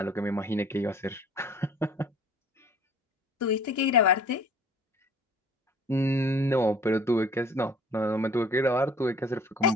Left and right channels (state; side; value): normal; both; correlation 0.51